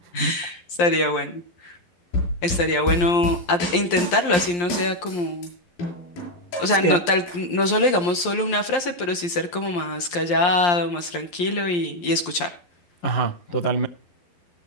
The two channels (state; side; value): late; right; 11 ms